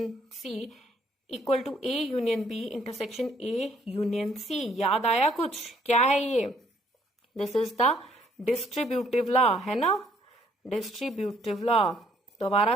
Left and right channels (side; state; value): both; normal; correlation 0.65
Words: C equal to A union B intersection A union C, याद आया कुछ, क्या है ये, this is the distributive law, है ना, डिस्ट्रीब्यूटिव लॉ। दोबारा